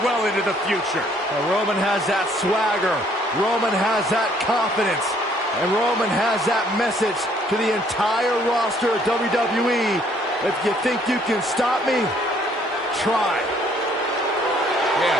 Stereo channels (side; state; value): both; normal; correlation 0.63